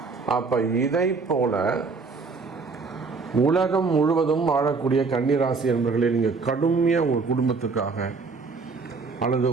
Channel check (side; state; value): left; quieter; 4.4 dB